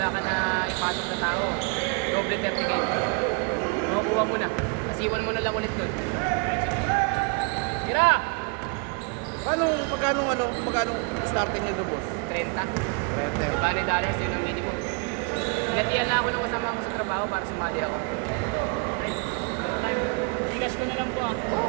ka na ipasok na tao, doble 30K. Makukuha mo na. Isiwan mo na lang ulit dun. Tira! Pagkano starting nito boss? 30. $30. Bani dollars yun ang minimum. Pinatiyan na ako nung kasama ko sa trabaho para sumali ako. Bigas ko na lang po ah. Oo,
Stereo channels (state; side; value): quieter; left; 34.1 dB